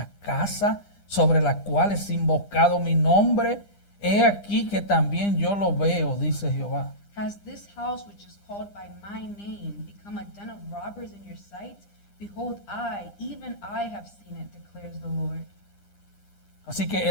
casa sobre la cual es invocado mi nombre? He aquí que también yo lo veo, dice Jehová. Has this house which is called by my name become a den of robbers in your sight? Behold, I, even I have seen it, declares the Lord. Así que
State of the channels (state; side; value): late; right; 9.9 ms